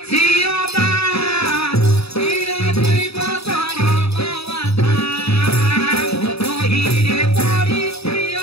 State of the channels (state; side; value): late; right; 0.78 ms